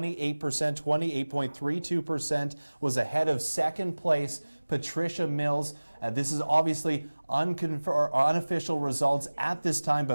was ahead of second place Patricia Mills. This is obviously unofficial results at this time,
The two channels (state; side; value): inverted; both; correlation -1.00